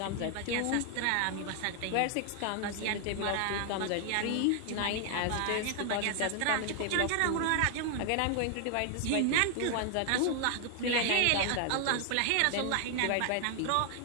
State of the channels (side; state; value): both; different; correlation 0.00